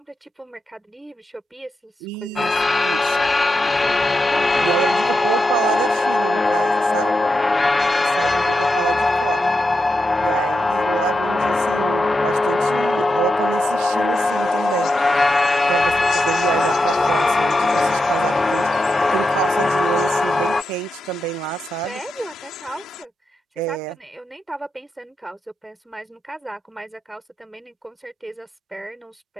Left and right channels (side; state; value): both; normal; correlation 0.87